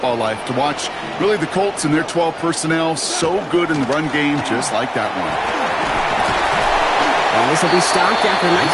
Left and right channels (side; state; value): both; identical; correlation 1.00